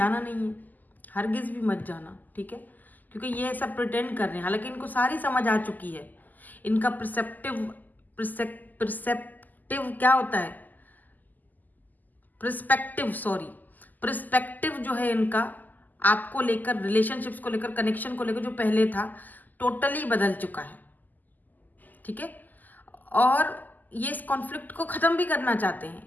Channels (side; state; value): right; late; 0.084 ms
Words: नहीं है, हरगिज भी मत जाना, ठीक है। क्योंकि ये ऐसा प्रिटेंड कर रहे हैं, हालांकि इनको सारी समझ आ चुकी है। इनका प्रिसेप्टिव क्या होता है, प्रिस्पेक्टिव जो है इनका आपको लेकर, रिलेशनशिप्स को लेकर, कनेक्शन को लेकर जो पहले था टोटली बदल चुका है, ठीक है। और ये इस कॉन्फ्लिक्ट को खत्म भी करना चाहते